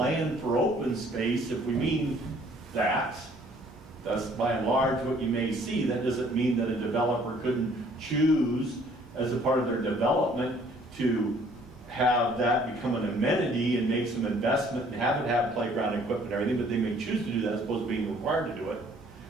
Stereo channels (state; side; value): normal; both; correlation 0.59